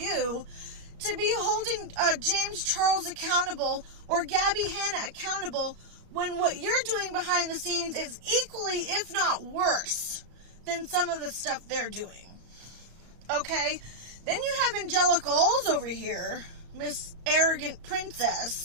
to be holding James Charles accountable or Gabby Hanna accountable when what you're doing behind the scenes is equally, if not worse, than some of the stuff they're doing? Okay? Then you have Angelica Olds over here, Miss Arrogant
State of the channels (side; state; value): left; late; 34 ms